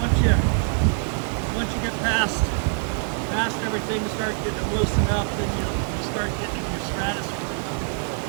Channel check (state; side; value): silent; left; 55 dB below the other